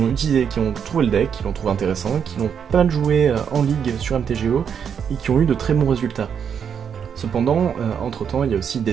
trouvé le deck, qui l'ont trouvé intéressant, qui l'ont pas mal joué en ligue sur MTGO, et qui ont eu de très bons résultats. Cependant, entre temps, il y a aussi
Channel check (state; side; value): quieter; left; 7.6 dB